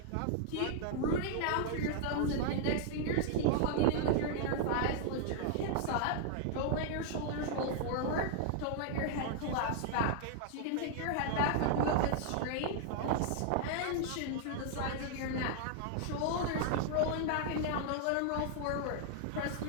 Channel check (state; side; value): different; both; correlation -0.01